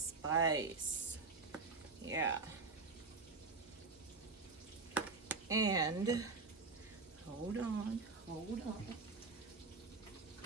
Yeah. And hold on. A little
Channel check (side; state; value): left; quieter; 4.2 dB